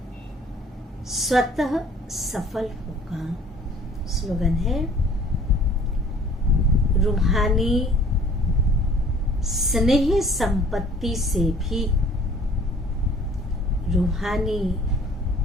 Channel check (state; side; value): normal; both; correlation 0.53